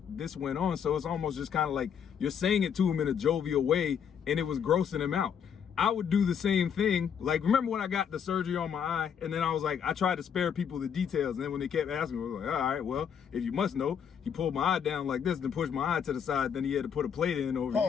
this went on. So it's almost just kind of like you're saying it to him in a jovial way, and it was grossing him out. I would do the same thing. Like, remember when I got the surgery on my eye, and then I was like, I tried to spare people the details, and then when they kept asking me, I was like, all right, well, if you must know, he pulled my eye down like this, then pushed my eye to the side, then he had to put a plate in over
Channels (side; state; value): right; quieter; 7.8 dB